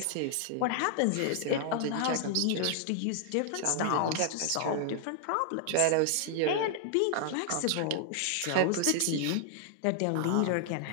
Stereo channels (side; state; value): both; different; correlation 0.00